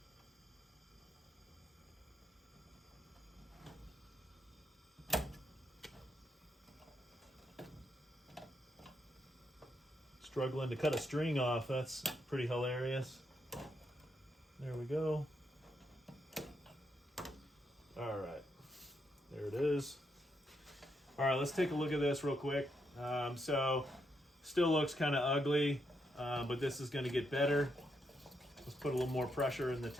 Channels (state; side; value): normal; both; correlation 0.79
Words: Struggling to cut a string off, that's pretty hilarious. There we go. All right, there it is. All right, let's take a look at this real quick. So still looks kind of ugly, but this is going to get better. Let's put a little more pressure in the